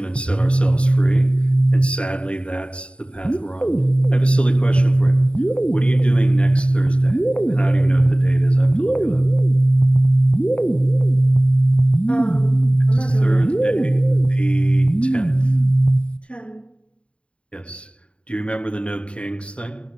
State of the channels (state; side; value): late; right; 0.058 ms